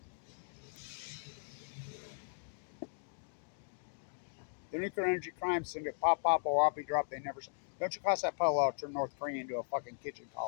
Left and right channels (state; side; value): silent; right; digital silence